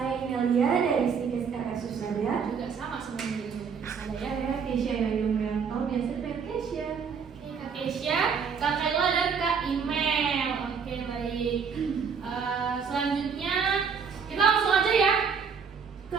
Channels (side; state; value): left; quieter; 6.1 dB